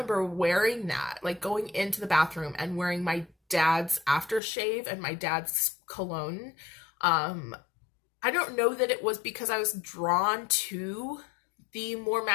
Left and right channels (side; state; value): right; drops out; at 4.4 s